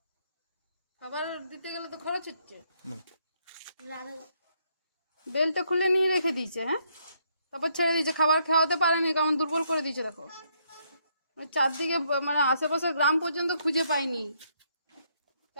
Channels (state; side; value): inverted; both; correlation -0.72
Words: খাবার দিতে গেলে তো খরচ হচ্ছে। বেলটা খুলে নিয়ে রেখে দিয়েছে, হ্যাঁ, তারপর ছেড়ে দিয়েছে, খাবার খাওয়াতে পারেনি, কেমন দুর্বল করে দিয়েছে দেখো। চারদিকে মানে আশেপাশের গ্রাম পর্যন্ত খুঁজে পাইনি,